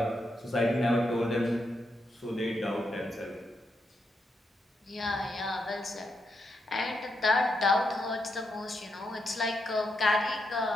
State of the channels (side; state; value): both; normal; correlation 0.82